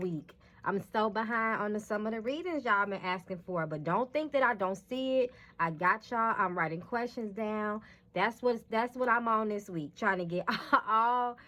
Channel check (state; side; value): identical; both; correlation 1.00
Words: I'm so behind on some of the readings y'all been asking for, but don't think that I don't see it. I got y'all. I'm writing questions down. That's what I'm on this week, trying to get all